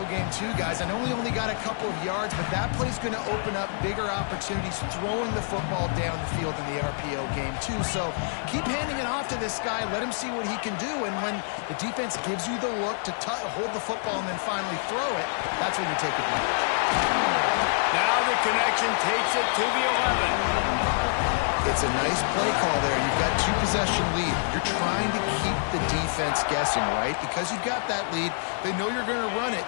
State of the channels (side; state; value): right; silent; digital silence